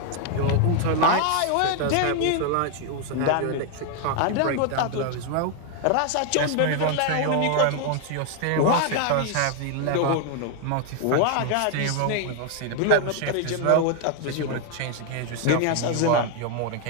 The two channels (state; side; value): different; both; correlation 0.00